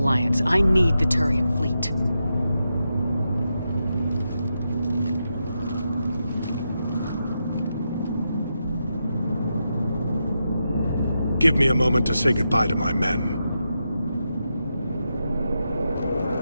I need the Turian fleet. Give me a moment to say goodbye to my men.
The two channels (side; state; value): both; inverted; correlation -0.86